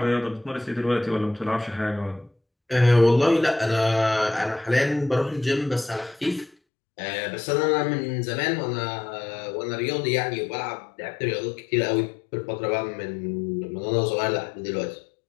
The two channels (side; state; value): right; drops out; at 6.6 s